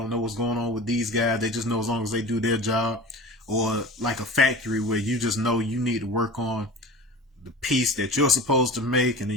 know what's going on with these guys. They just know as long as they do their job. Or like a factory where you just know you need to work on the piece that you're supposed to make, and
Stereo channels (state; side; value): normal; both; correlation 0.35